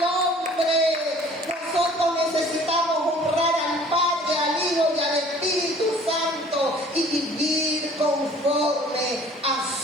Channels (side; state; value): both; normal; correlation 0.51